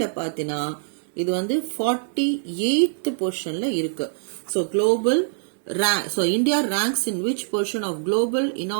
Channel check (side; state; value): left; silent; 58 dB below the other